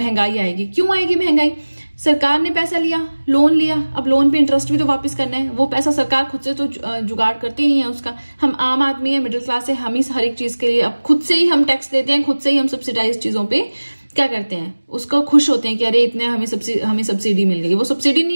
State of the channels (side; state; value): both; inverted; correlation -1.00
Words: आएगी। क्यों आएगी महंगाई? सरकार ने पैसा लिया, लोन लिया, अब लोन पे इंटरेस्ट भी तो वापस करना है। वो पैसा सरकार खुद से तो जुगाड़ करती नहीं है उसका। हम आम आदमी है, मिडिल क्लास है, हम ही हर एक चीज के लिए अब खुद से ही हम टैक्स देते हैं, खुद से ही हम सब्सिडाइज चीजों पे क्या करते हैं, उसको खुश होते हैं कि अरे इतने हमें सब्सिडी मिल गई। वो सब्सिडी